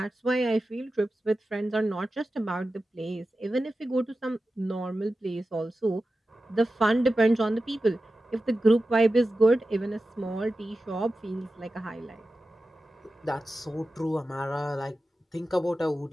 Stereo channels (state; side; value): normal; both; correlation 0.93